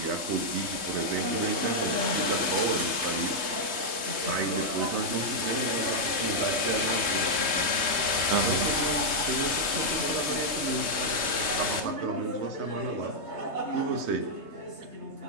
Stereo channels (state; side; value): late; left; 3.2 ms